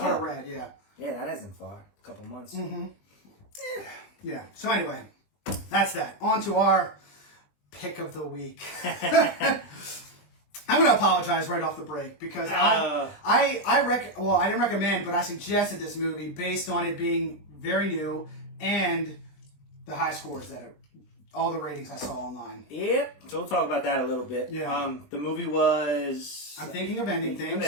I read. Yeah. Yeah, that isn't far. A couple months. Yeah. So anyway, that's that. On to our pick of the week. I'm going to apologize right off the break because I didn't recommend, but I suggested this movie based on it being very new and the high scores that all the ratings I saw online. Yep. So we'll talk about that a little bit. Yeah. The movie was... I'm Thinking of Ending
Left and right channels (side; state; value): right; late; 20 ms